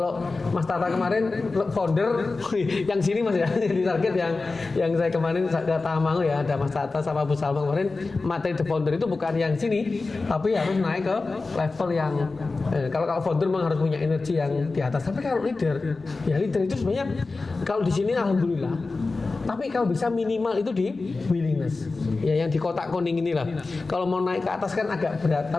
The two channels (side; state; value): right; quieter; 3.7 dB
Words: Mas Tata kemarin founder yang sini Mas ya. Target yang saya kemarin ke Tamango ya, ada Mas Tata sama Bu Salma kemarin, materi the founder itu bukan yang sini, tapi harus naik ke level yang kalau founder memang harus punya energi yang di atas. Tapi kalau leader itu sebenarnya kalau di sini alhamdulillah. Tapi kalau bisa minimal itu di willingness. Ya yang di kotak kuning inilah. Kalau mau naik ke atas kan agak berat,